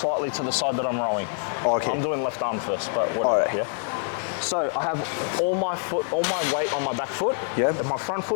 to the side that I'm rowing. Okay. I'm doing left arm first, but whatever, Alright. yeah? So I have all my weight on my back foot, Yeah. and my front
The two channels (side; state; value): right; silent; digital silence